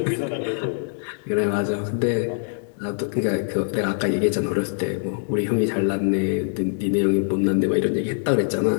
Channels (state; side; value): silent; right; digital silence